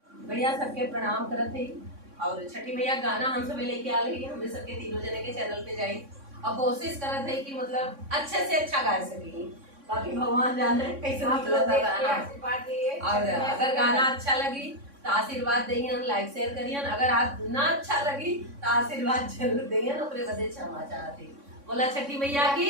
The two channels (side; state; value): left; late; 3.6 ms